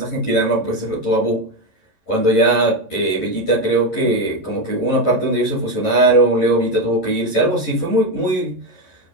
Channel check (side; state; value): right; late; 10 ms